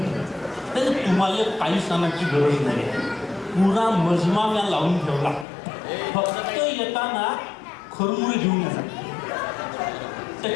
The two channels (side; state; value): right; drops out; at 5.5 s